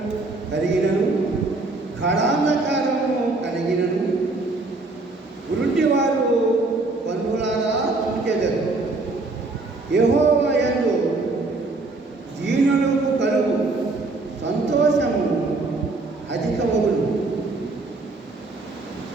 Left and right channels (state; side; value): quieter; left; 3.3 dB